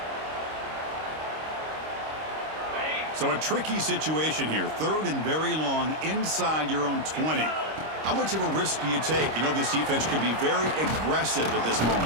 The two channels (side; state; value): left; late; 26 ms